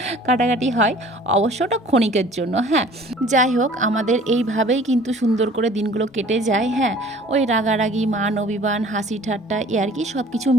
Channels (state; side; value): normal; both; correlation 0.50